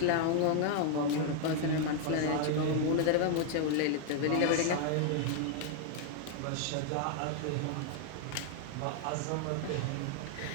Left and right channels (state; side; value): different; both; correlation 0.00